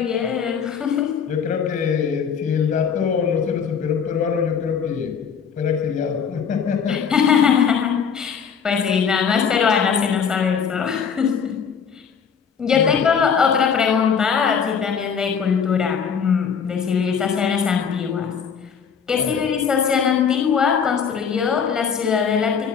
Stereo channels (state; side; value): quieter; right; 6.8 dB